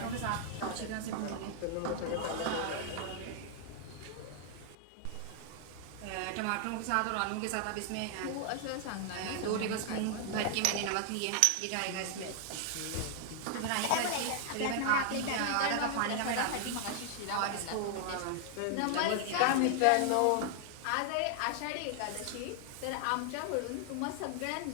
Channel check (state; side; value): different; both; correlation 0.00